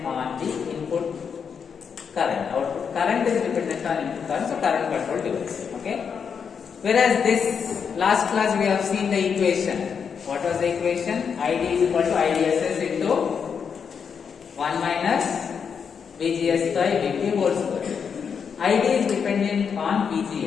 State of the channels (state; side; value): quieter; right; 6.6 dB